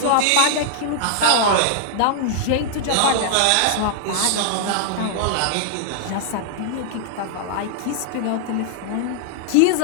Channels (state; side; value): different; both; correlation -0.01